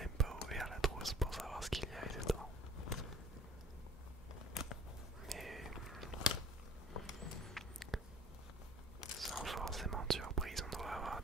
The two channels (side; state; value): both; normal; correlation 0.51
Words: pas ouvert la trousse pour savoir ce qu'il y avait dedans. Mais sans forcément de surprise, on doit avoir